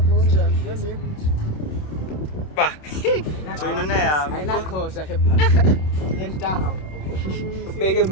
bonjani lenze ba joyinona yami ayinakhosa ke pha nentaha beke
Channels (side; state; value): right; late; 27 ms